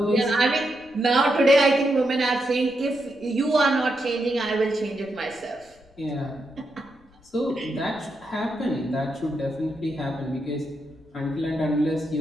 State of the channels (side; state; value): left; noise; rumble, 29 dB below the sound